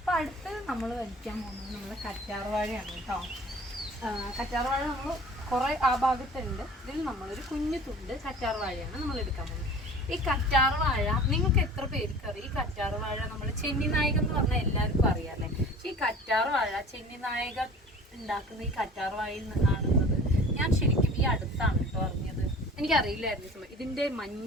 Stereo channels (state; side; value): normal; both; correlation 0.44